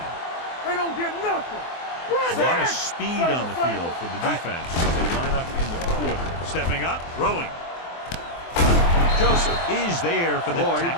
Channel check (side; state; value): right; late; 24 ms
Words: They don't get nothing. A lot of speed on the field for the defense as they line up in the quarter. Stepping up, throwing. Joseph is there for the